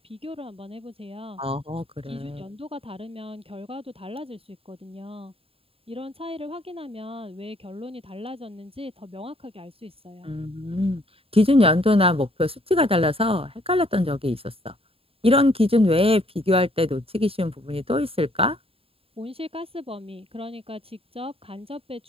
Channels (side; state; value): left; late; 0.27 ms